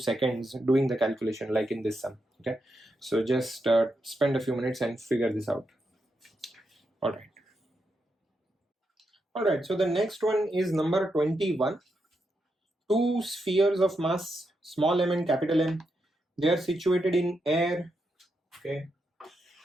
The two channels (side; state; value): both; normal; correlation 0.84